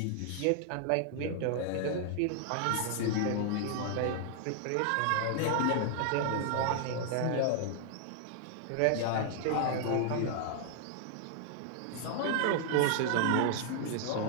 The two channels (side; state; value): both; different; correlation -0.01